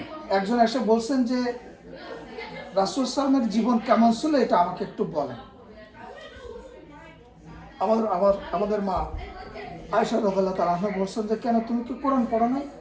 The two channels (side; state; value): both; identical; correlation 1.00